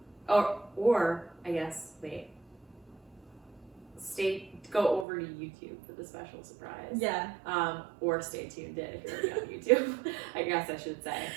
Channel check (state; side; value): drops out; left; at 5.1 s